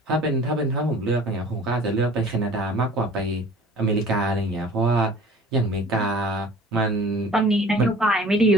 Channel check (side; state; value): both; normal; correlation 0.47